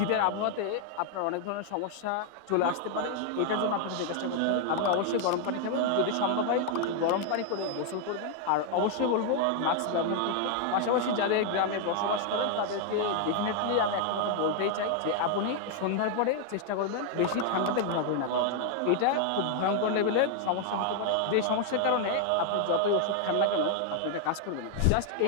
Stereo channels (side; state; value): both; different; correlation 0.00